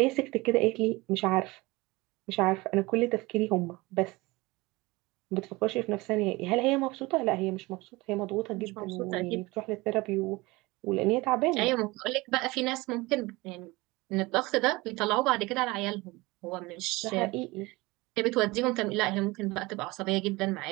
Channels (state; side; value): quieter; left; 22.4 dB